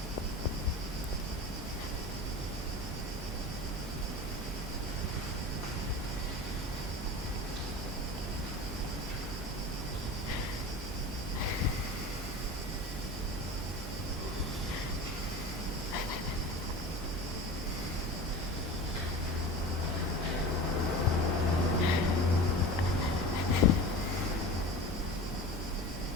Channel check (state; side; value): normal; both; correlation 0.33